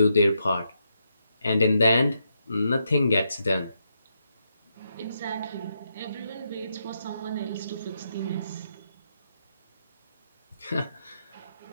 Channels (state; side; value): inverted; both; correlation -0.81